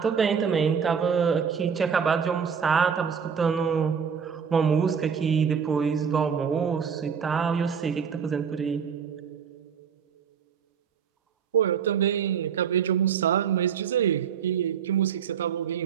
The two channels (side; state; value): left; quieter; 7.0 dB